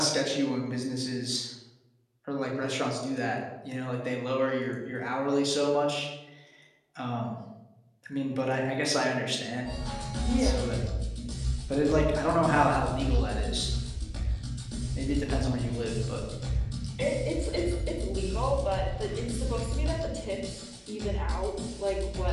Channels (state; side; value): identical; both; correlation 1.00